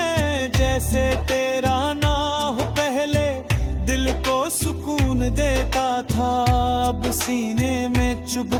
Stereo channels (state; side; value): identical; both; correlation 1.00